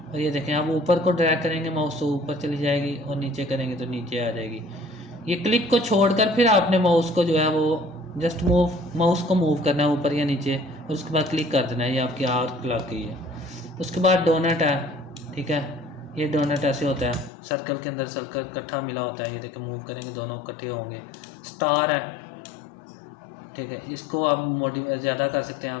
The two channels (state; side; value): drops out; right; at 17.3 s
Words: और ये देखें, आप ऊपर को ड्रैग करेंगे माउस तो ऊपर चली जाएगी, और नीचे करेंगे तो नीचे आ जाएगी। ये क्लिक को छोड़कर फिर आपने माउस को जो है वो जस्ट माउस को मूव करना है ऊपर या नीचे, और उसके बाद क्लिक कर देना है। ये आपकी आर्क लग गई है। उसके बाद डोनट है, ठीक है। ये डोनट ऐसे होता है, सर्कल के अंदर सर्कल इकट्ठा मिला होता है। ये देखिए, मूव करेंगे दोनों इकट्ठे होंगे। स्टार है, ठीक है। इसको आप मॉडिफाई ज़्यादा कर सकते हैं।